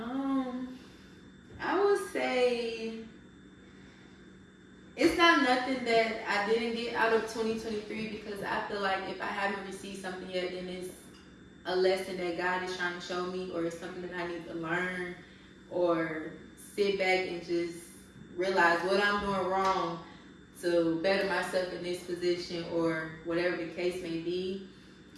I would say it's not nothing that I didn't get out of 2023, because I feel like if I haven't received something yet, then it's a lesson that God is trying to show me, or it's something that I need to learn, or sit back and just realize what I'm doing wrong to better myself in this position, or whatever the case may be.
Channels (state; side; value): identical; both; correlation 1.00